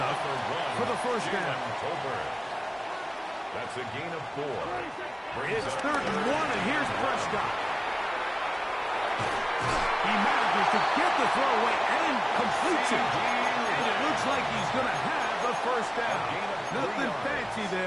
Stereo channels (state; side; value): identical; both; correlation 1.00